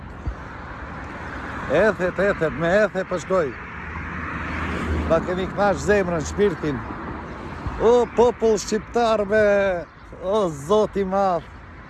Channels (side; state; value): both; identical; correlation 1.00